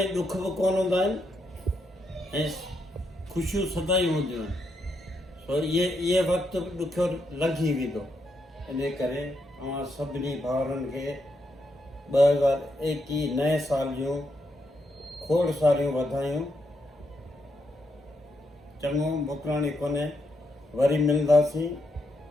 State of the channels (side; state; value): both; normal; correlation 0.80